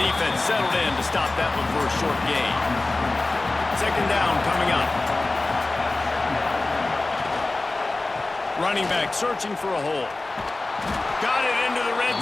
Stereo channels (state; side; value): quieter; right; 3.1 dB